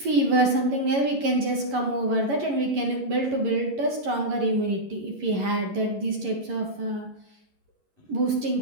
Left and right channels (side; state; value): left; late; 11 ms